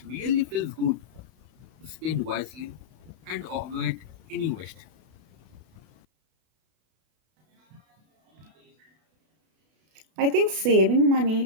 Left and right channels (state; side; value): late; left; 32 ms